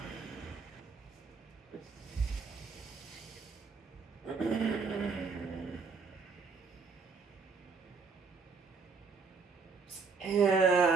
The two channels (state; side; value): quieter; left; 4.9 dB